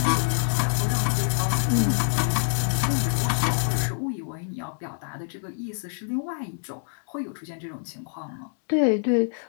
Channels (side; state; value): right; silent; digital silence